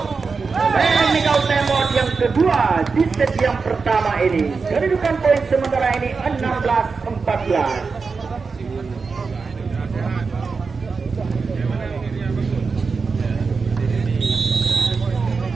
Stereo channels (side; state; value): left; quieter; 4.8 dB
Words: Technical timeout yang kedua di set yang pertama ini. Kedudukan poin sementara ini 16-14.